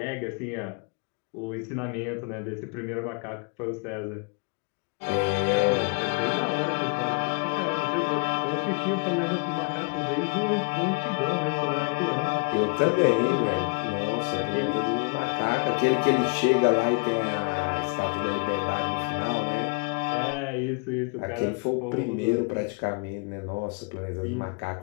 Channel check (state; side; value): quieter; right; 31.8 dB